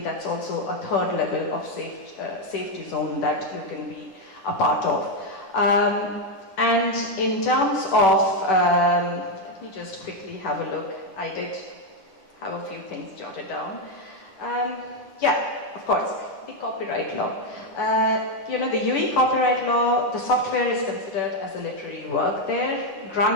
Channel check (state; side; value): late; right; 10 ms